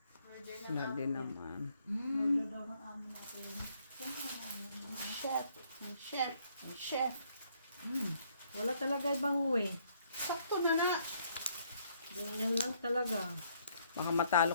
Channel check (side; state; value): both; inverted; correlation -0.68